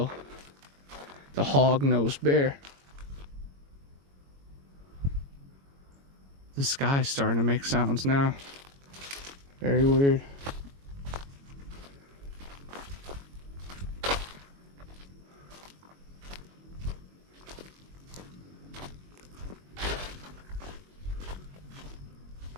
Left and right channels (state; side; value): late; left; 22 ms